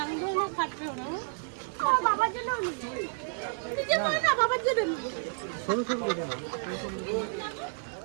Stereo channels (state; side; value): silent; left; digital silence